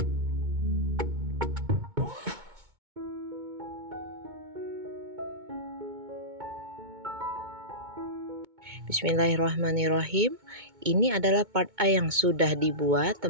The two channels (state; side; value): late; left; 2.2 ms